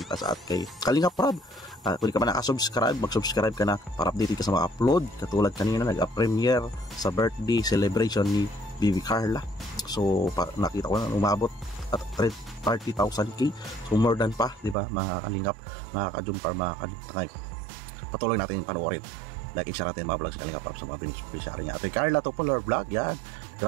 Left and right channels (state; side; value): drops out; left; at 14.8 s